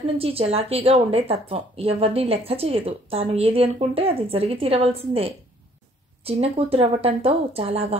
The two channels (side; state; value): both; normal; correlation 0.60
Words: నుంచి చలాకీగా ఉండే తత్వం. ఎవరిని లెక్క చేయదు. తాను ఏది అనుకుంటే అది జరిగి తీరవలసిందే. చిన్న కూతురు అవ్వటంతో చాలా